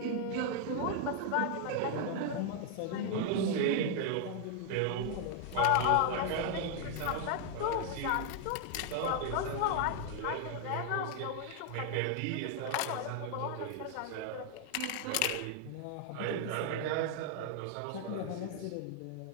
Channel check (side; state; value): both; different; correlation 0.00